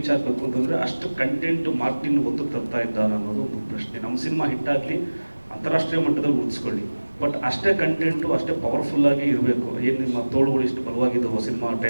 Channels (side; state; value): both; inverted; correlation -1.00